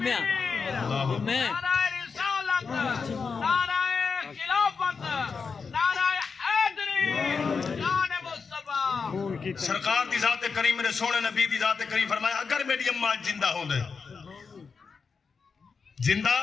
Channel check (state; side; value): quieter; right; 5.3 dB